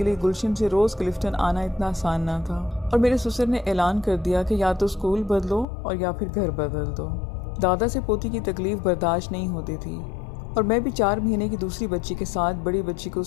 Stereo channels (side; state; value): right; drops out; at 5.7 s